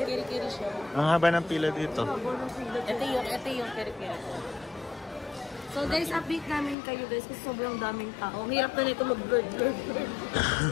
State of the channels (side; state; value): right; drops out; at 6.8 s